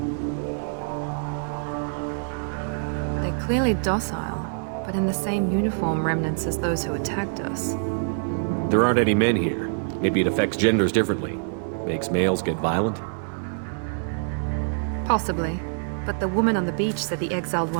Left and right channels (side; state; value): left; silent; 62 dB below the other